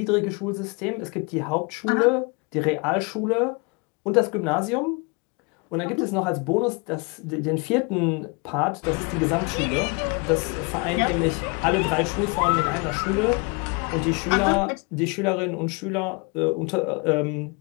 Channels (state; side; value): quieter; right; 30.4 dB